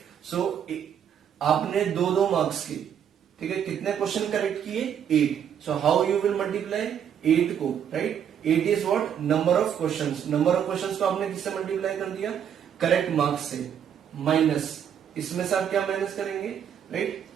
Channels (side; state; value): left; quieter; 8.7 dB